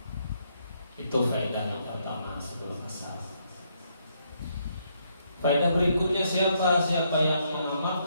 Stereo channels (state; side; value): inverted; both; correlation -0.74